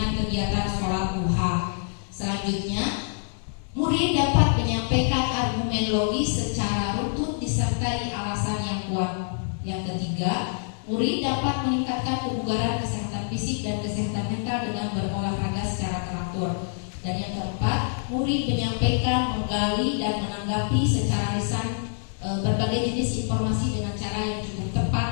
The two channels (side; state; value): right; silent; 56 dB below the other